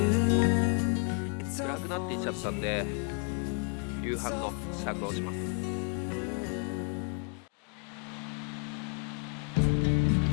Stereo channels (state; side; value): quieter; right; 37.1 dB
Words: It's all 暗くなっていっちゃったんで夕飯の支度をします。